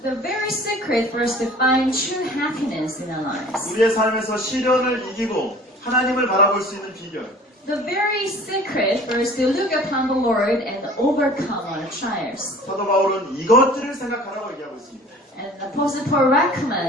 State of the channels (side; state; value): both; normal; correlation 0.46